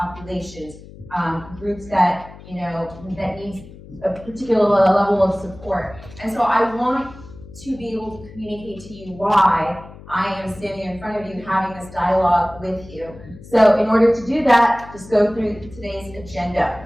groups that, that need a particular level of support. And so I want to be able to communicate to you why I am standing in front of you having this dialogue with you. So in order to do that, just go through today's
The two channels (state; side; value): noise; left; hum, 18 dB below the sound